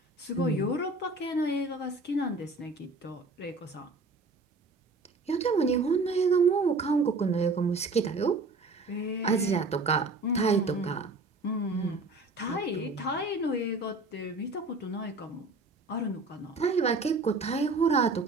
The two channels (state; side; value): quieter; left; 3.3 dB